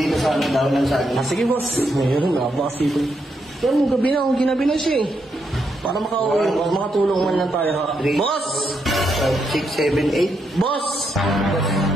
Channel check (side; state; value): both; normal; correlation 0.80